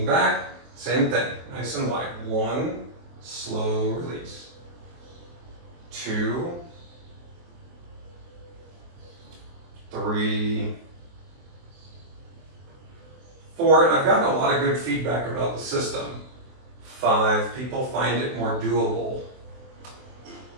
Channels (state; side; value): late; left; 23 ms